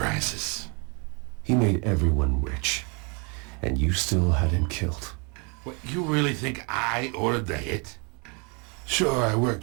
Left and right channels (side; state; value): left; quieter; 32.9 dB